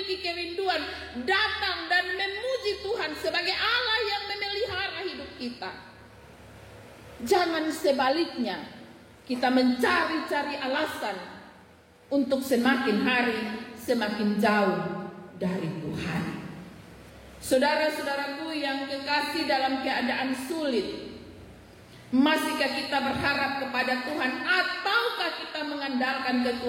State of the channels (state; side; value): identical; both; correlation 1.00